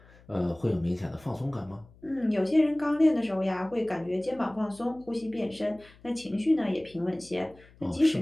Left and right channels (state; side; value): noise; left; hum, 25 dB below the sound